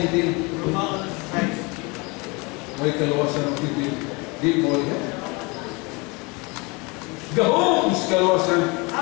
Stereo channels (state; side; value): quieter; right; 27.8 dB